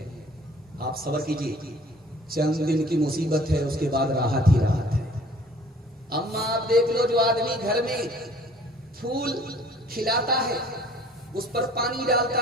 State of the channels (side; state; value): both; normal; correlation 0.53